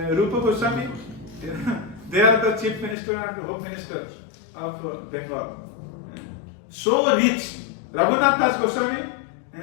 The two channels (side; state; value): right; drops out; at 3.0 s